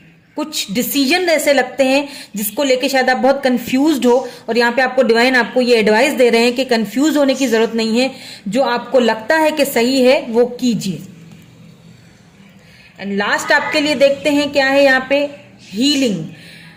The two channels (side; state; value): both; identical; correlation 1.00